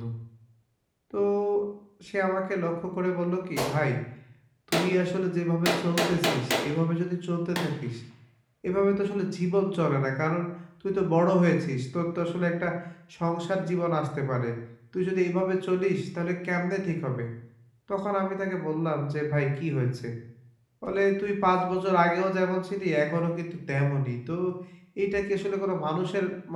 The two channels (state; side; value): identical; both; correlation 1.00